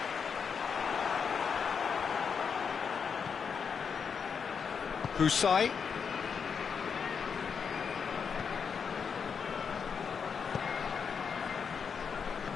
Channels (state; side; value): quieter; right; 6.3 dB